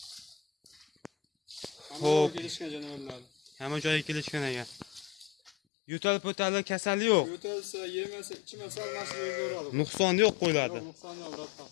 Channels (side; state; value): right; drops out; at 5.5 s